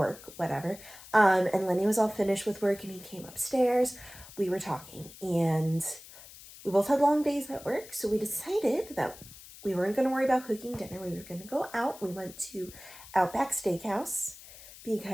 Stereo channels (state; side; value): noise; left; hiss, 18 dB below the sound